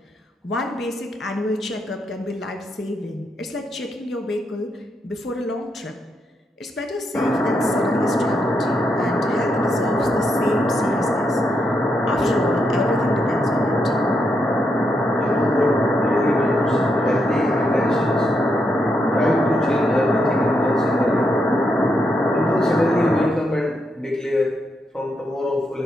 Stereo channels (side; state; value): both; normal; correlation 0.81